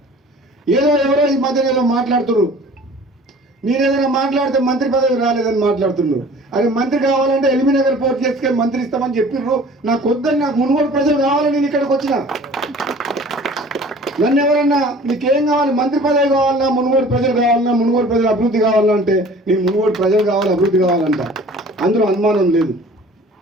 ఎవరో ఈ మధ్య ఏదో మాట్లాడుతున్నారు. నేను ఏదైనా మాట్లాడితే మంత్రి పదవి రాలేదని మాట్లాడుతున్నారు. అది మంత్రి కావాలంటే ఎల్బీనగర్ పోర్ట్ చేసుకొని మంత్రి ఇస్తామని చెప్పిర్రు. నాకు వద్దని, నాకు మునుగోడు ప్రజలు కావాలని నేను ఇక్కడికి వచ్చిన. నన్ను ఎవరన్నా నీకేం కావాలి, మంత్రి పదవి కావాలన్నా, మునుగోడు ప్రజలు కావాలన్నా, మునుగోడు ప్రజలు అభివృద్ధి కావాలంటే నేను మునుగోడు ప్రజలు కావాలి, అభివృద్ధి కావాలంట. అందులో అనుమానం లేదు.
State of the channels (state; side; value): normal; both; correlation 0.47